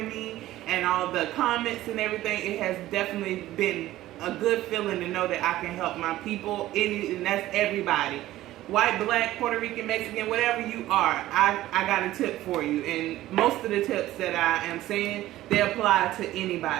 me and all the comments and everything. It has definitely been a good feeling to know that I can help my people, and that's everybody. White, black, Puerto Rican, Mexican, whatever you are, I got a tip for you. And most of the tips that I am saying, they apply to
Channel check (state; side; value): quieter; left; 15.2 dB